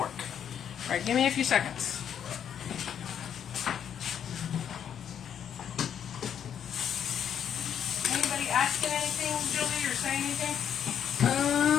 Alright, give me a few seconds. Anybody asking anything, Julie, or saying anything?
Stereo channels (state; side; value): quieter; right; 8.8 dB